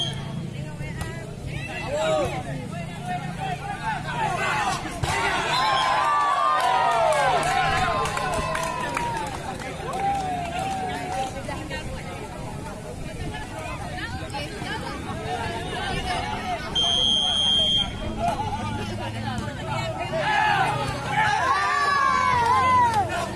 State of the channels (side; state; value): both; identical; correlation 1.00